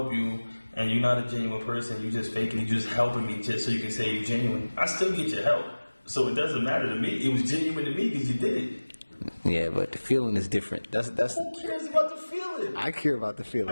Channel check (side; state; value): both; inverted; correlation -1.00